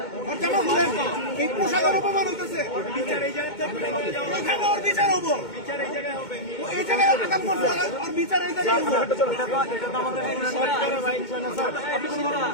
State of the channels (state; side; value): late; right; 2.2 ms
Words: এই পোশাকের অপমান হইতেছে, বিচার এই জায়গায় ওর বিচার হবো, বিচার এই জায়গায় হবে, এই জায়গায় আগাম করছে আর বিচার এই জায়গায় হবে। এটা তো আমাদের আপনি কোনো